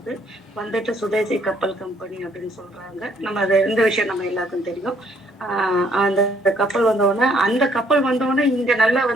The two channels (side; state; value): both; normal; correlation 0.65